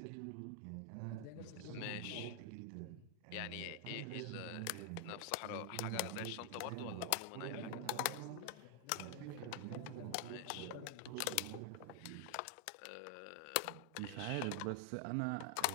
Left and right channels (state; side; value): different; both; correlation 0.00